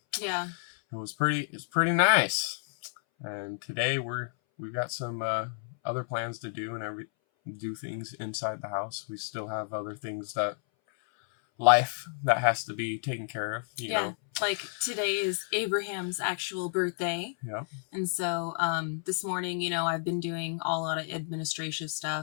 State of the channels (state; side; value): silent; right; 57 dB below the other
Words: yeah, it's pretty nice. And today we've got some other plans to do and do things inside the house. We still have other things that has to be taken care of. You know. Like today is Abraham's actual birthday. Yeah. And so this morning, I've been doing a lot of administrative